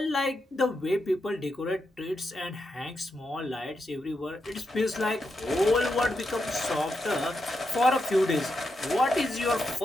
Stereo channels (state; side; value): normal; both; correlation 0.85